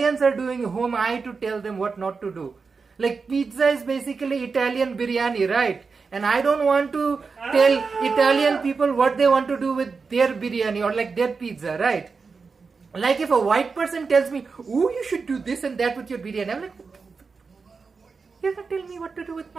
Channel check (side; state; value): left; quieter; 4.8 dB